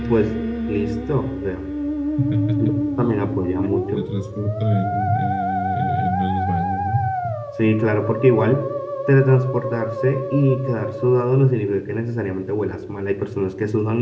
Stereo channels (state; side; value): identical; both; correlation 1.00